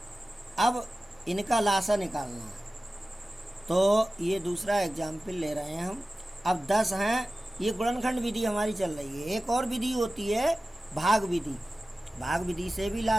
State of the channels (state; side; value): normal; both; correlation 0.96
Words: अब इनका लासा निकालना है, तो ये दूसरा एग्जाम्पल ले रहे हैं हम। अब 10 हैं, ये गुणनखंड विधि हमारी चल रही है। एक और विधि होती है भाग विधि, भाग विधि से भी